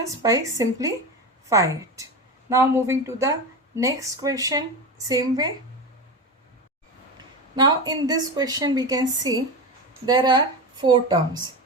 by simplify it. Now moving to the next question, same way. Now in this question we can see there are 4 terms.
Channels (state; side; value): normal; both; correlation 0.21